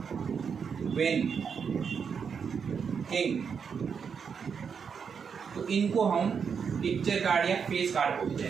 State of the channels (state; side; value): quieter; left; 6.5 dB